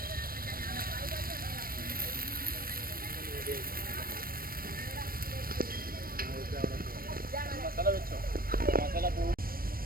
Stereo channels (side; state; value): left; late; 0.43 ms